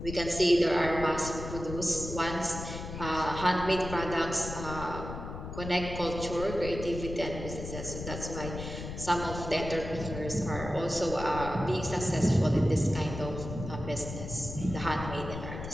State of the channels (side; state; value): left; noise; rumble, 8 dB below the sound